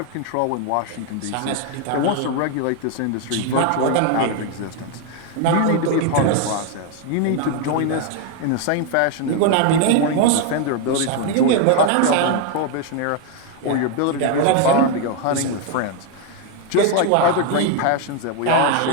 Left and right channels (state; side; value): different; both; correlation 0.01